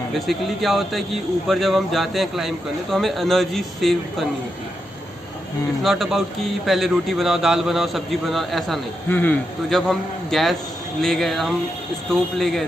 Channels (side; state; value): both; normal; correlation 0.85